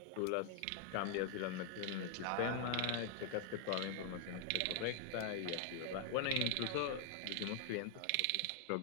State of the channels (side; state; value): both; different; correlation 0.00